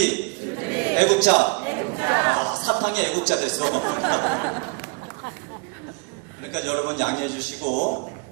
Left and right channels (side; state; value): left; quieter; 32.4 dB